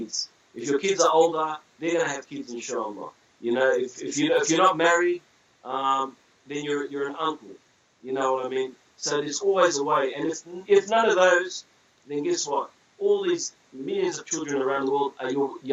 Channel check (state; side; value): identical; both; correlation 1.00